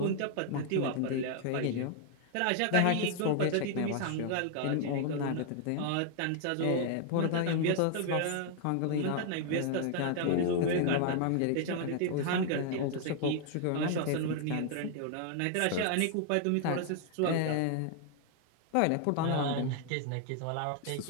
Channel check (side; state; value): both; different; correlation 0.00